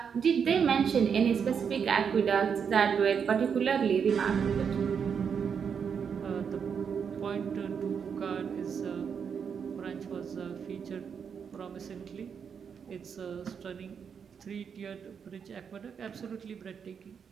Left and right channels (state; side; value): quieter; left; 6.9 dB